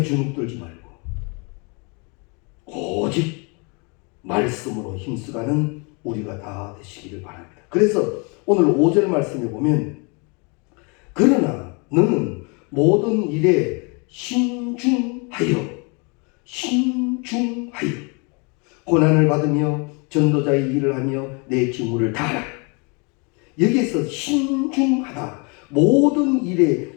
주눅들지 말고 오직 말씀으로 힘쓰가는 우리가 다 되시기를 바랍니다. 그래서 오늘 5절 말씀에 보면, 그러나 너는 모든 일에 신중하여 고난을 받으며 전도자의 일을 하며 내 직무를 다하라. 여기에서 신중하다, 모든 일에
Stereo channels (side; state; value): right; quieter; 32.3 dB